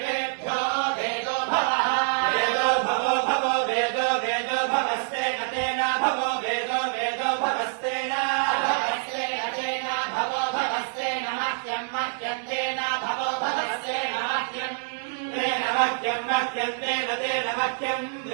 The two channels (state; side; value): silent; left; digital silence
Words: वेदो भवः वेदो भवो भवो वेदो वेदो भवस्तेन तेन भवो वेदो वेदो भवस्तेन भवस्तेन भवो भवस्तेन मह्यं मह्यं तेन भवो भवस्तेन मह्यं तेन मह्यं मह्यं तेन तेन मह्यं